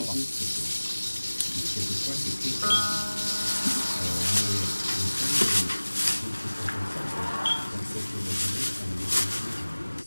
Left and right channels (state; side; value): inverted; both; correlation -1.00